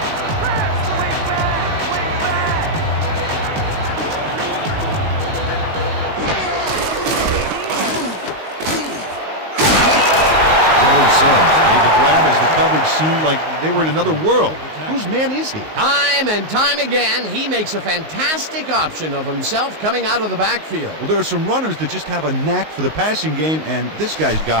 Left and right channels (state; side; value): late; left; 19 ms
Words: Billy Sims made the grab as the coverage seemed like they were in another world. Whose man is he? Time and time again, he makes a fantastic option of himself coming out of the backfield. Well, there are some runners that just have a knack for the passing game, and this guy's